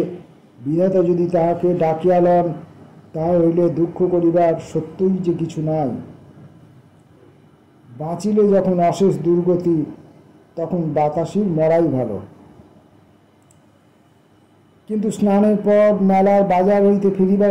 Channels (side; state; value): both; identical; correlation 1.00